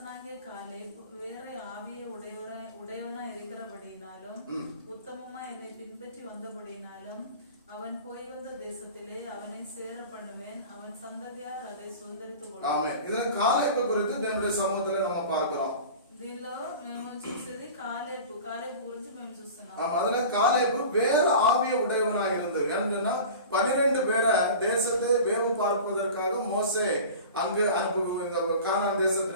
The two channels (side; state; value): both; inverted; correlation -0.37